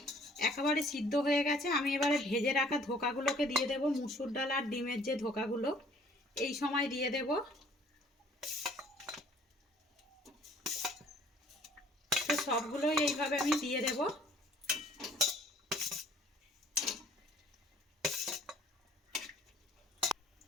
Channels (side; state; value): both; normal; correlation 0.56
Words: একেবারে সিদ্ধ হয়ে গেছে। আমি এবারে ভেজে রাখা ধোকাগুলোকে দিয়ে দেব, মুসুর ডাল আর ডিমের যে ধোকাগুলো এই সময় দিয়ে দেব। তো সবগুলোই এইভাবে আমি দিয়ে দেব।